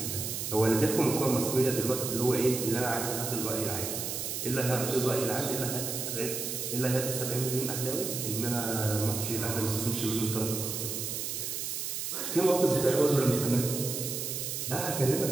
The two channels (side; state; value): right; noise; hiss, 4 dB below the sound